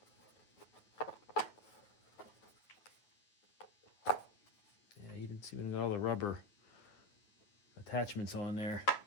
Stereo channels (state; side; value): late; right; 9.0 ms